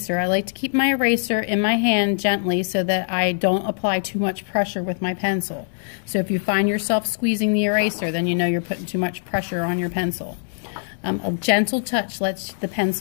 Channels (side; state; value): right; silent; digital silence